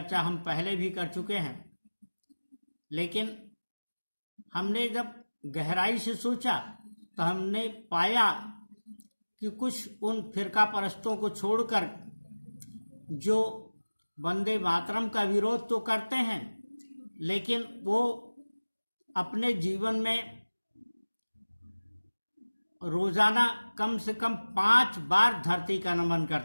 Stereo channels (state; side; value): inverted; both; correlation -1.00